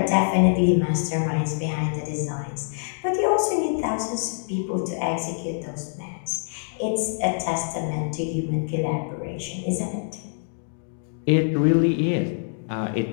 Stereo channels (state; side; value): silent; right; digital silence